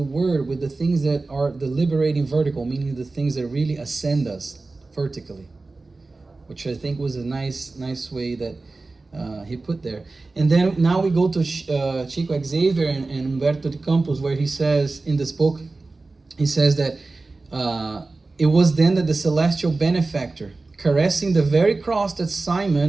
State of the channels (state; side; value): quieter; left; 3.5 dB